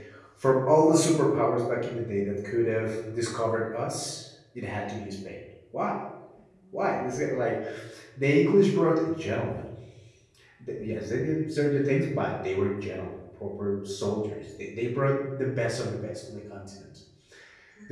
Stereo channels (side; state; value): both; identical; correlation 1.00